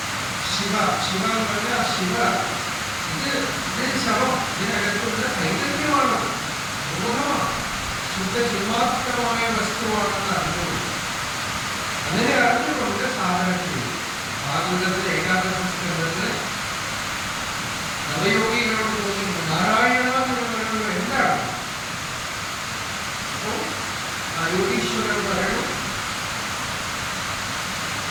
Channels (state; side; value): identical; both; correlation 1.00